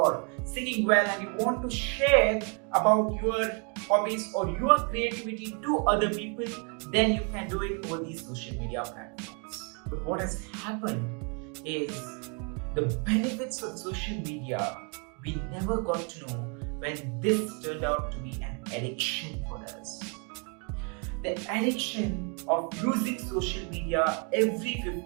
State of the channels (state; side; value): quieter; left; 36.3 dB